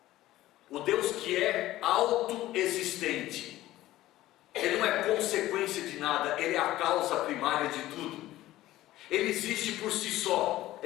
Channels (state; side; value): quieter; right; 15.6 dB